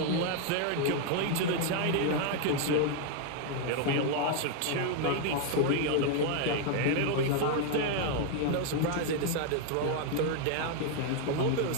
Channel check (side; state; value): both; different; correlation 0.01